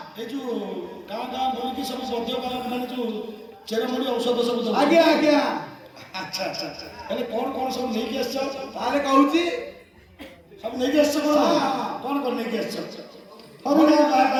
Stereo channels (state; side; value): identical; both; correlation 1.00